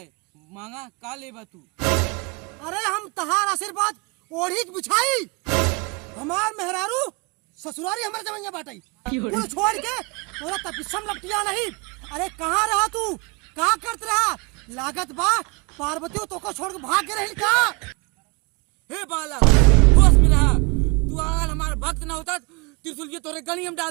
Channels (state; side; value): quieter; left; 30.5 dB